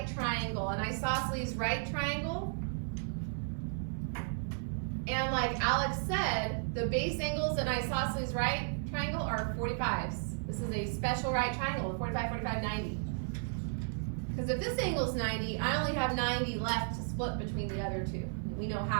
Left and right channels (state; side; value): silent; left; 55 dB below the other